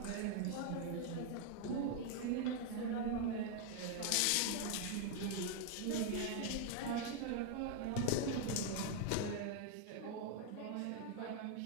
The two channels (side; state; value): both; different; correlation 0.00